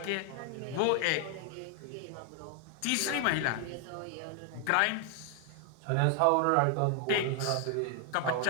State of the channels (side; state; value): both; different; correlation 0.00